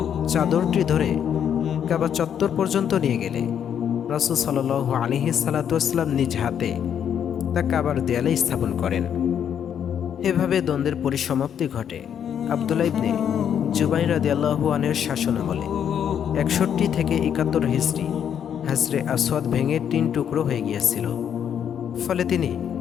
চাদরটি ধরে কাবা চত্বর পর্যন্ত নিয়ে গেলে রাসূল সাল্লাল্লাহু আলাইহি সাল্লাম নিজ হাতে তা কাবার দেয়ালে স্থাপন করেন। এভাবে দ্বন্দ্বের পরিসমাপ্তি ঘটে আব্দুল্লাহ ইবনে জুবাইর রাদিয়াল্লাহু আনহুর শাসনামলে। 61 থেকে 71 হিজরি হজরে আসওয়াদ ভেঙে 3 টুকরো হয়ে গিয়েছিল। ফলে তিনি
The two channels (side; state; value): right; quieter; 8.7 dB